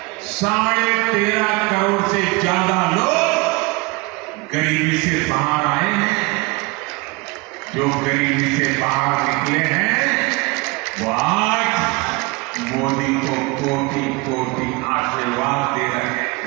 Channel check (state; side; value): quieter; left; 25.9 dB